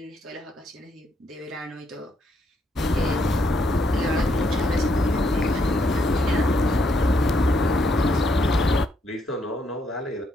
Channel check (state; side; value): normal; both; correlation 0.75